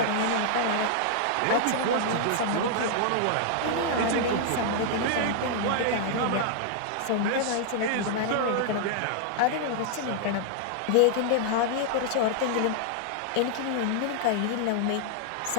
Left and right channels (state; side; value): different; both; correlation -0.01